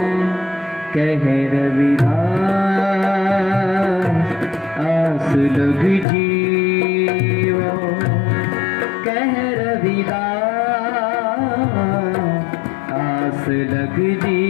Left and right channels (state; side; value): drops out; right; at 6.1 s